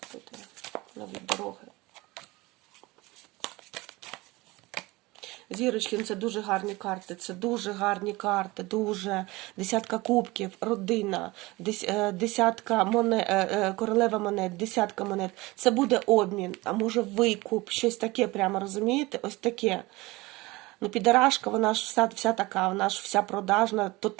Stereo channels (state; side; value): quieter; left; 21.5 dB